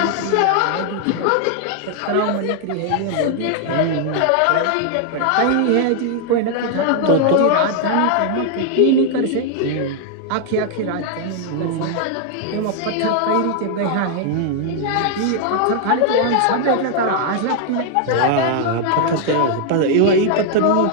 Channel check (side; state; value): both; different; correlation 0.00